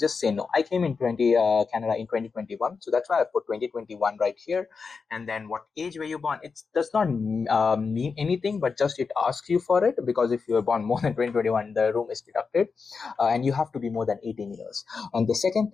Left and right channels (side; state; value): right; quieter; 5.1 dB